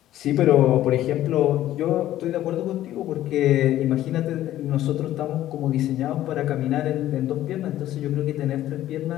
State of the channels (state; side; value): quieter; right; 13.4 dB